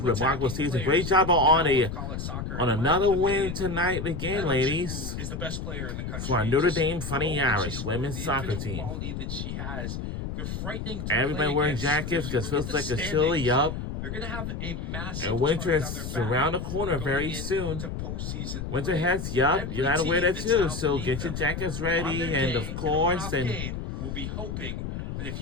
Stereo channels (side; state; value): left; noise; rumble, 5 dB below the sound